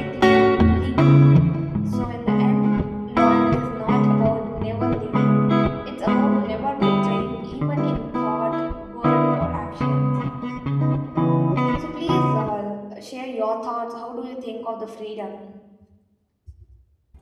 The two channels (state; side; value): identical; both; correlation 1.00